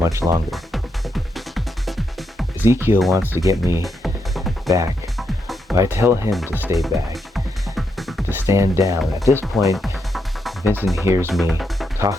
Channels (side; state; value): both; normal; correlation 0.81